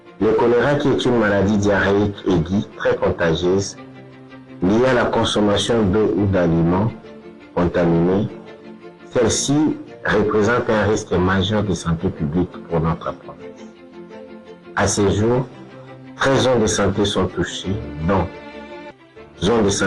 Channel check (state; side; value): identical; both; correlation 1.00